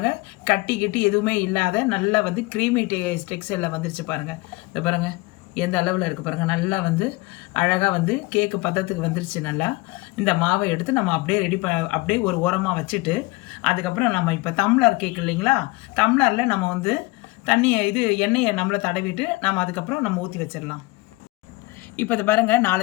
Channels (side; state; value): right; quieter; 22.8 dB